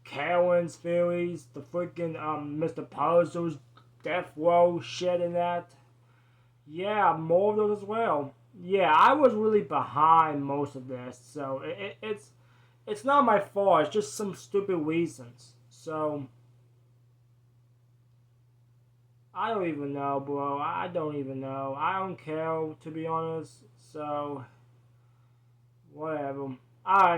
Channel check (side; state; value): both; identical; correlation 1.00